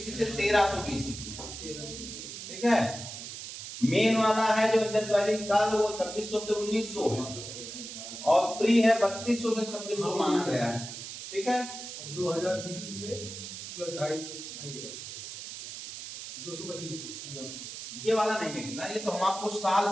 से 1300 बीसी। ठीक है, मेन वाला है जो इंडस वैली काल वो 2600 से 1900 है, और प्री है 3200 से 2600 माना गया है। ठीक है, 2000 बीसी से प्लस 2.5 225 ये वाला नहीं निकला, ये तो हम आपको साल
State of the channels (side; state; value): right; noise; hiss, 10 dB below the sound